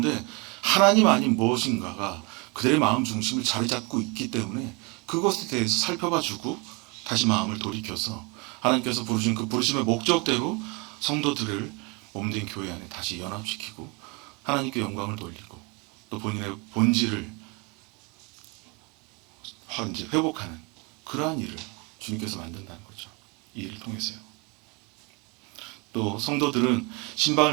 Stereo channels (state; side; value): quieter; left; 28.8 dB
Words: 하나님 아닌 무엇인가가 그들의 마음 중심을 자리 잡고 있기 때문에 그것에 대해서 살펴봐주고 다시 마음을 돌이켜서 하나님께서 부르신 그 부르심의 목적대로 성도들을 몸된 교회 안에 다시 연합시키고 하나님께 영광을 돌리고 또 본인의 본질을 이제 회복하는 그러한 일을 주님께서 만든다는 거죠. 이 일을 통해서요. 또 성도들은